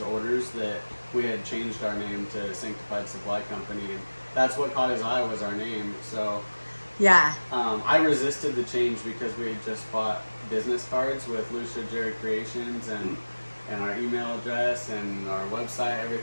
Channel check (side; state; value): both; inverted; correlation -1.00